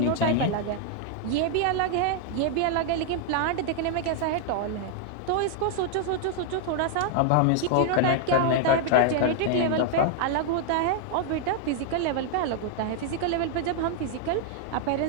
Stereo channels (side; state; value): both; different; correlation 0.00